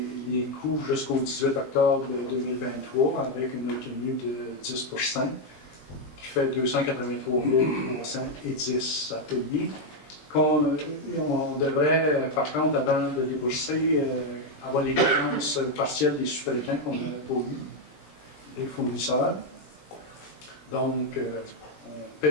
coûts jusqu'au 18 octobre 2023 avec une retenue de 10 qui fait 283 310 à payer. On devrait, par contre, avant de débourser, avoir les dépenses partielles des sous-traitants qu'on n'a pas eu, les fournisseurs. Donc, on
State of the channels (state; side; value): late; right; 20 ms